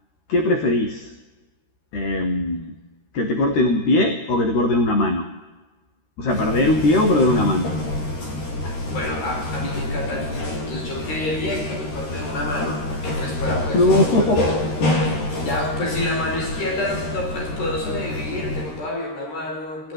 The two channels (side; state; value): right; late; 13 ms